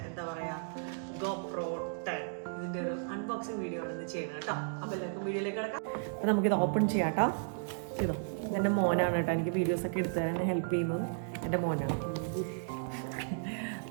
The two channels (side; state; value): left; silent; digital silence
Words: എന്താ പറയുക GoPro 10. ഇതിൻ്റെ ഒരു അൺബോക്സിങ് വീഡിയോ ആണ് ഇന്ന് ചെയ്യണം കേട്ടോ. അപ്പോൾ എല്ലാവർക്കും വീഡിയോയിലേക്ക് കിടക്കാം. അപ്പോൾ നമുക്കിത് ഓപ്പൺ ചെയ്യാം കേട്ടോ. ചെയ്തോ. എൻ്റെ മോനാണ് കേട്ടോ എനിക്ക് വീഡിയോസൊക്കെ എടുത്തു തരാൻ ഹെൽപ്പ് ചെയ്യുന്നത്. എൻ്റെ മോനാണ്.